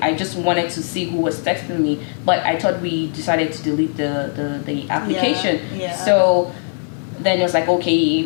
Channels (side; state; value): right; silent; digital silence